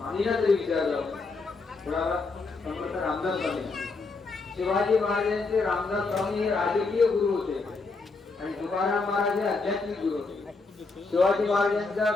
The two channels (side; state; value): right; quieter; 3.9 dB